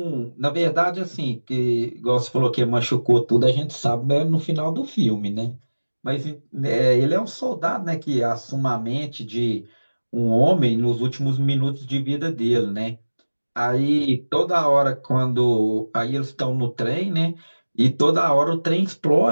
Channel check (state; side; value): inverted; both; correlation -1.00